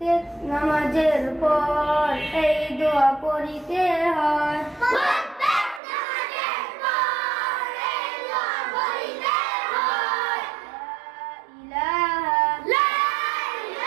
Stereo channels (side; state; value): left; drops out; at 5.8 s